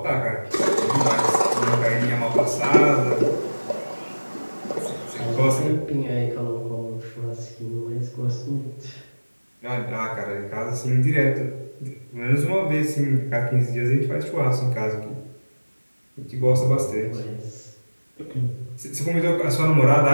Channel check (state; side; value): inverted; both; correlation -1.00